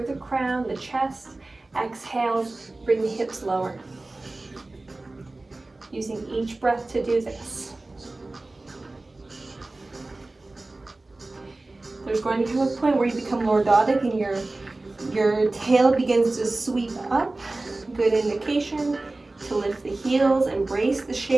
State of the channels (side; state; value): left; quieter; 3.0 dB